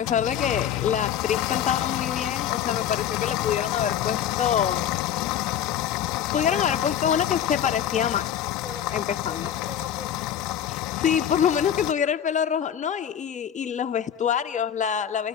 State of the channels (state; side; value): quieter; right; 9.6 dB